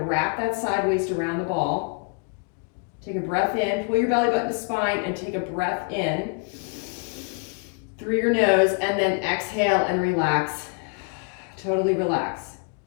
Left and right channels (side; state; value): right; quieter; 39.9 dB